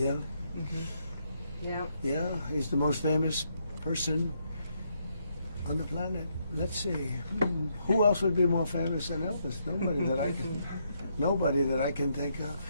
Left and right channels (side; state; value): both; inverted; correlation -0.76